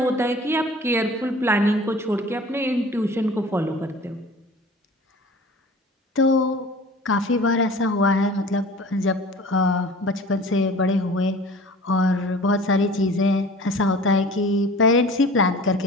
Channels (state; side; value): normal; both; correlation 0.43